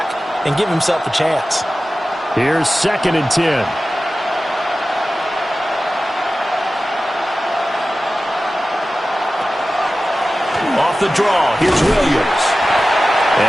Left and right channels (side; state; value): both; normal; correlation 0.95